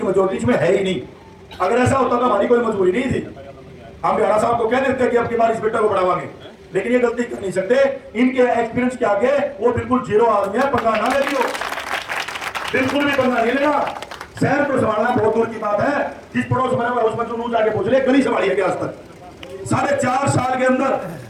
मेजोरिटी इसमें है ही नहीं। अगर ऐसा होता तो हमारी कोई मजबूरी नहीं थी। हम भ्याणा साहब को कह देते कि अब की बार इस बेटा को बढ़ावांगे, लेकिन ये गलती कर नहीं सकते। इनके एक्सपीरियंस के आगे वो बिल्कुल जीरो आदमी है। पंगा ना ले लियो, बिल्कुल भी पंगा नहीं लेना। शहर को संभालना बहुत दूर की बात है। जिस पड़ोस में उसमें जो जाके पूछ ले, गली संभाली है क्या आज तक? 4.5 साल के अंदर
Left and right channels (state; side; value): identical; both; correlation 1.00